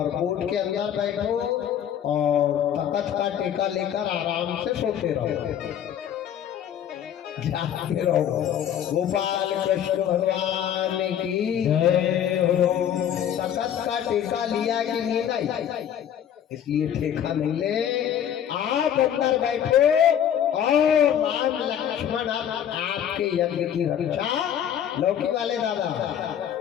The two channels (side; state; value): right; quieter; 9.7 dB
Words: के अंदर बैठो और तख्त का टेका लेकर आराम से सोते रहो, जाते रहो। गोपाल कृष्ण भगवान की जय हो। तख्त का टेका लिया कि नहीं? इसलिए ठेका नहीं ले, आप अंदर बैठे और राम लक्ष्मण आपके यज्ञ की रक्षा लौकी वाले दादा